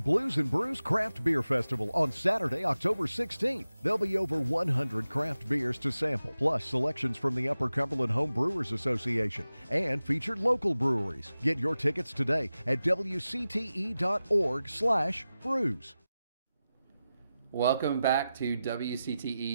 and Brews Craft Beer Festival on Saturday, October 16th. There'll be over 100 craft beers to sample, plus selections from the Upper Cumberland Home Brewers Association and featured local breweries. Get your tickets today at wcte.org/brews. Welcome back to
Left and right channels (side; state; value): both; inverted; correlation -0.94